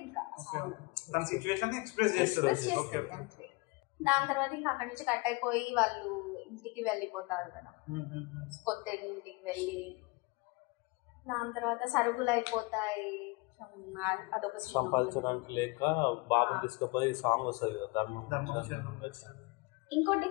ఇంకా. దాని తర్వాత ఇంకా అక్కడ నుంచి కట్ అయిపోయి వాళ్ళు ఇంటికి వెళ్ళిపోతారు కదా, కొత్త ఇంటికి వెళ్ళి. దాని తర్వాత సరుకులు అయిపోతాయి, అదొక సంపాదించడానికి లేక బాబుని తీసుకుపోయి సాంగ్ వస్తుంది కదా, ధర్మం. ఇంకోటి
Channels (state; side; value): quieter; right; 26.1 dB